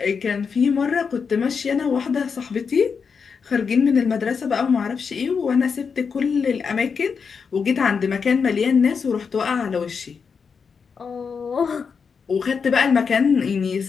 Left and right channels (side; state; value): right; quieter; 5.8 dB